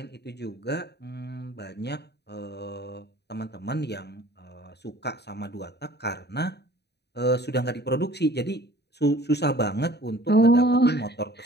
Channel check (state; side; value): late; right; 0.48 ms